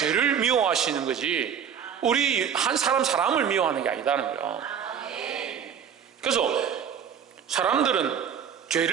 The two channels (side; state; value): left; quieter; 8.0 dB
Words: 미워하시는 거지 우리 한 사람을 미워하는 게 아니다는 거예요. 그래서 사람들은